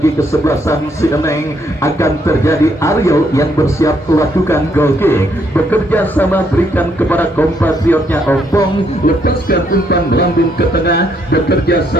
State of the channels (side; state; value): both; normal; correlation 0.72